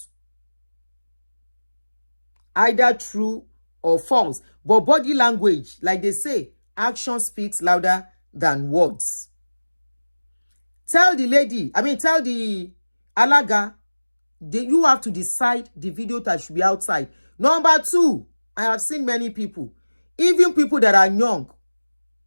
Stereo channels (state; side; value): inverted; both; correlation -1.00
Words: Either true or false. But body language, like they say, action speaks louder than words. Tell the alaga, you have to decide the video that should be outside. Number 2, I have seen many people, even people that are young.